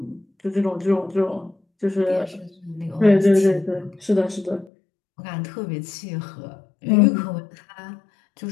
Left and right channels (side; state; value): right; drops out; at 4.7 s